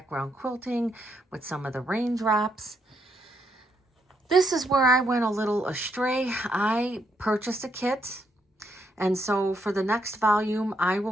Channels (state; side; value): normal; both; correlation 0.76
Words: quilting with some of the raindrops. This is where I went a little astray. I purchased a kit, and so for the next volume, I